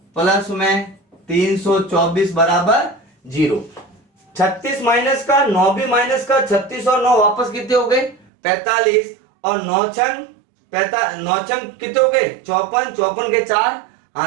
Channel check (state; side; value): drops out; left; at 8.2 s